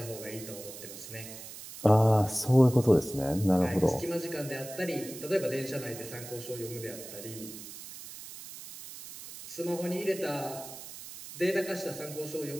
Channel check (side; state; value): right; noise; hiss, 13 dB below the sound